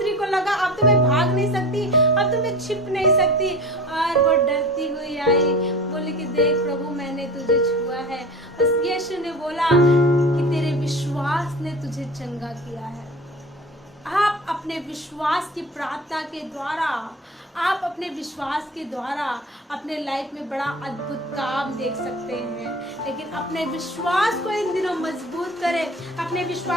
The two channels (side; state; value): both; normal; correlation 0.36